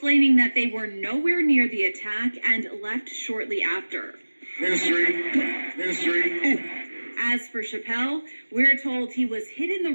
that they were nowhere near the attack and left shortly after. History. As for Chappelle, we're told he was hit in the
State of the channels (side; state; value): both; inverted; correlation -1.00